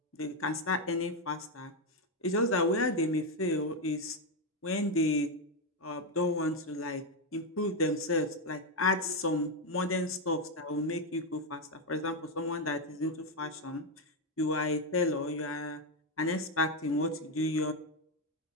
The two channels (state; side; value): normal; both; correlation 0.06